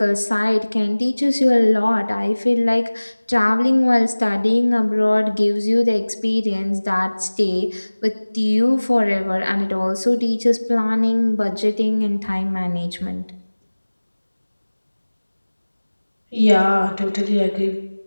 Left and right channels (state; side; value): inverted; both; correlation -1.00